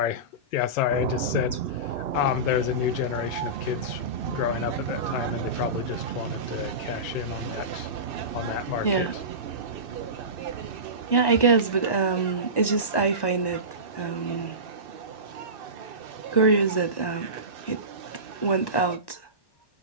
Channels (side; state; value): right; late; 1.1 ms